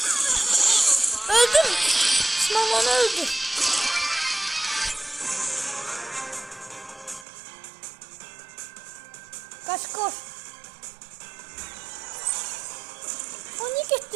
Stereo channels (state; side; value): drops out; left; at 7.2 s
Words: Öldüm. Osman öldü. Kaç koş. O niye